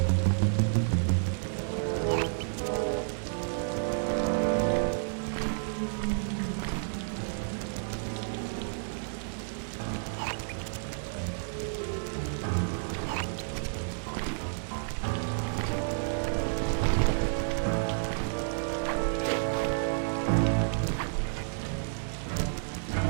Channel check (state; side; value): silent; left; digital silence